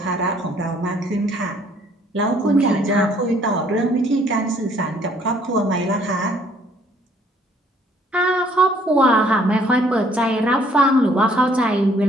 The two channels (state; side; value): normal; both; correlation 0.62